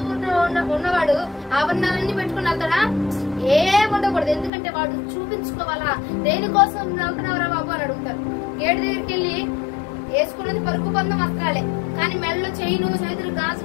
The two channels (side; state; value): right; drops out; at 4.5 s